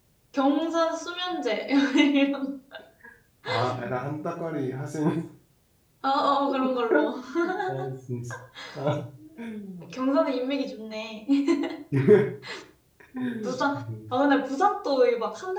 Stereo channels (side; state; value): both; identical; correlation 1.00